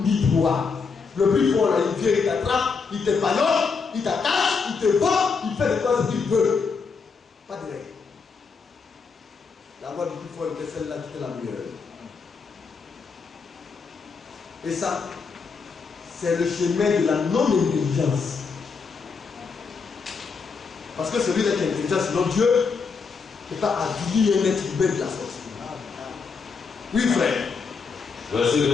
droit. Le plus fort, là, il vient, il t'attrape, il te ballonne, il t'attache, il te bat, il fait de toi ce qu'il veut. Pas de règle. La loi du plus fort était celle-là qui était la meilleure. Et ça, c'est le chemin de la non-intelligence. Parce que celui-là qui est intelligent, sinon Dieu ne peut pas avilir un être humain de la sorte. Oui, frère. Verset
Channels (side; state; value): right; quieter; 5.2 dB